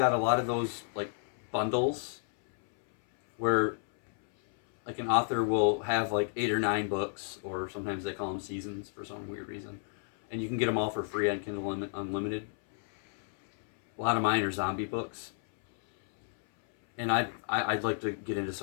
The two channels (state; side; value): silent; right; 57 dB below the other